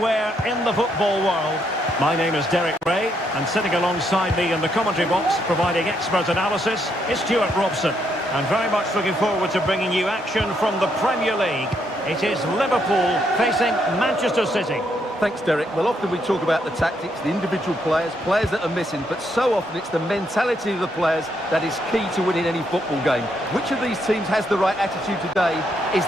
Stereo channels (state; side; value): normal; both; correlation 0.76